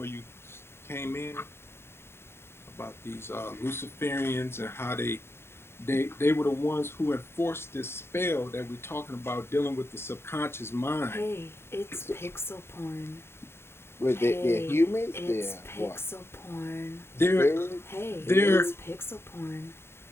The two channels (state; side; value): late; right; 0.12 ms